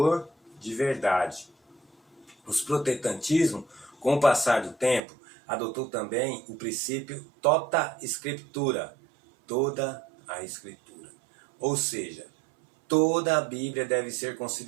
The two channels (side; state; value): left; drops out; at 5.0 s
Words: de verdade. O protestantismo, com o passar do tempo, adotou também o princípio tota scriptura, toda a Escritura. Ou seja, toda a Bíblia deve ser